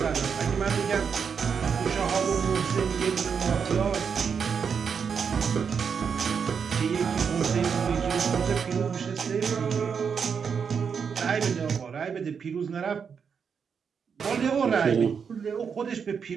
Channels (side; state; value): left; quieter; 6.5 dB